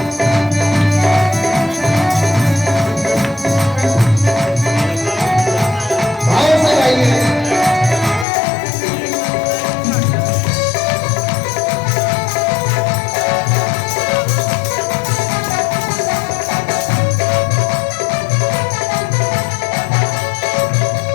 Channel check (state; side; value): drops out; right; at 8.2 s